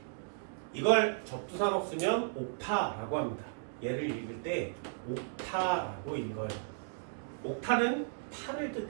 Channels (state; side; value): silent; left; digital silence